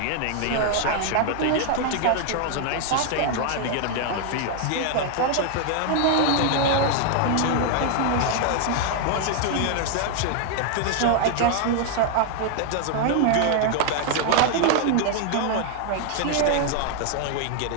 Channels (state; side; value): different; both; correlation 0.00